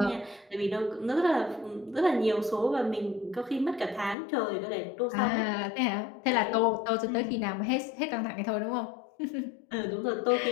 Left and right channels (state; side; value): drops out; right; at 4.2 s